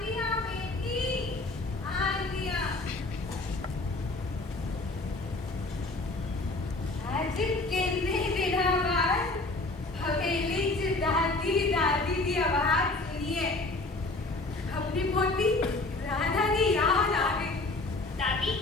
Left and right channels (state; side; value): quieter; right; 3.1 dB